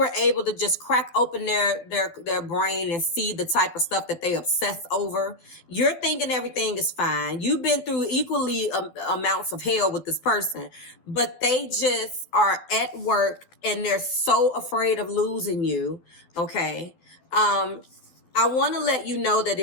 able to just crack open their brain and see the type of stuff that they obsess over, you're thinking everything is fine. You've been through equally amounts of hell with this person, but they just are at work and they're so afraid of losing you. Okay. I want to let you know that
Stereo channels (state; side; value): late; right; 12 ms